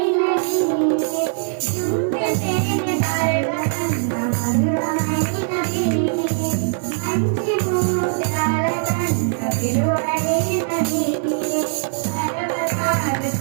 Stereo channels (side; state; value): left; silent; 62 dB below the other